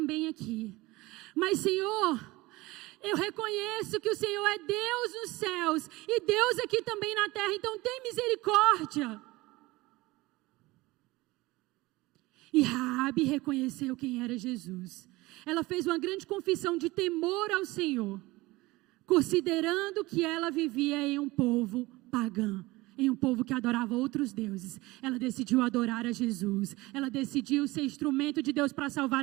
aqui. Mas, Senhor, eu reconheço que o Senhor é Deus nos céus e Deus aqui também na terra, então tem misericórdia. E Raabe reconheceu quem era Jesus. Ela fez uma grande confissão de temor ao Senhor, considerando que ela vivia em um povo pagão, em um povo que adorava outros deuses. Ela decidiu adorar a Jesus. Ela decidiu ser instrumento de Deus para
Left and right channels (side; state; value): left; quieter; 20.6 dB